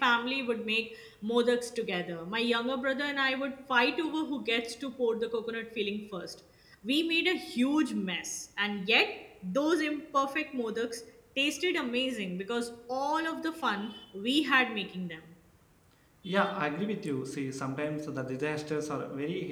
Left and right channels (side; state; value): both; identical; correlation 1.00